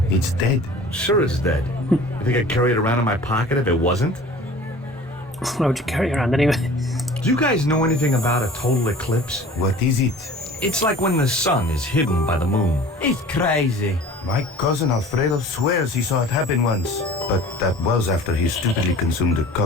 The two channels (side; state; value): both; normal; correlation 0.44